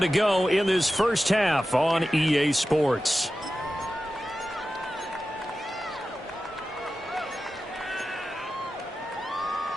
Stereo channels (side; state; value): both; normal; correlation 0.93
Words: go in this first half on EA Sports.